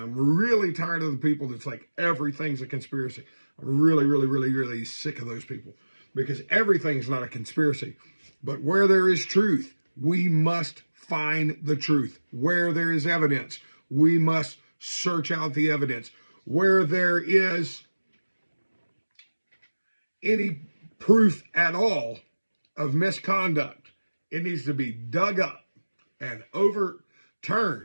really tired of the people that's like, everything's a conspiracy. I'm really, really, really, really sick of those people, because everything's not a conspiracy. But where there is truth, we must find the truth. Where there is evidence, we must search out the evidence. Where there is any proof at all of misconduct, it needs to be dug up and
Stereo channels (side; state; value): both; inverted; correlation -1.00